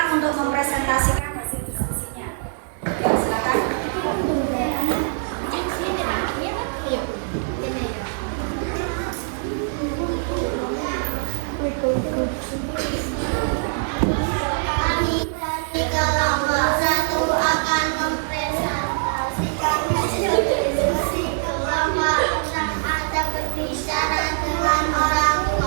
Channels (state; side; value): silent; left; 63 dB below the other